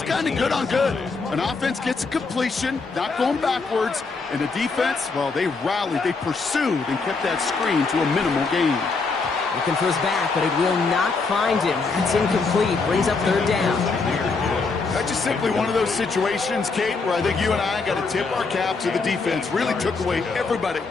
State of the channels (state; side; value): quieter; right; 4.3 dB